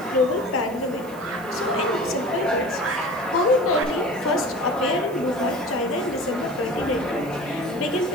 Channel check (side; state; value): right; noise; hiss, 22 dB below the sound